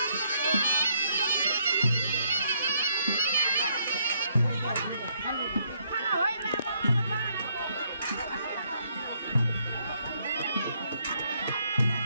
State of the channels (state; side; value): inverted; both; correlation -0.71